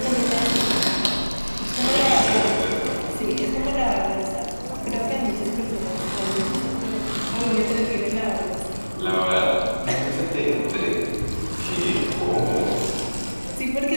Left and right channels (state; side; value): inverted; both; correlation -1.00